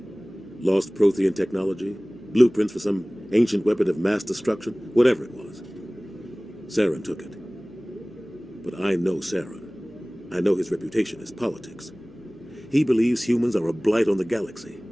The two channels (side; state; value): left; noise; hum, 29 dB below the sound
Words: Lost Prothean technology? Blueprints for some ancient weapon of mass destruction? Whatever it was. Saren took it. But I know Saren. I know his reputation is politics. He believes humans are a blight on the galaxy.